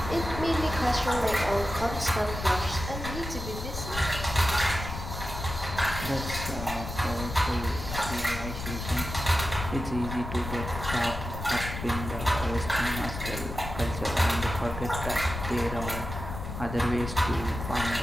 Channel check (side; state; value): left; noise; rumble, 7 dB below the sound